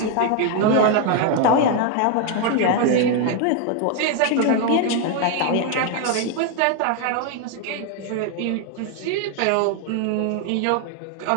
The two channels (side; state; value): both; different; correlation 0.01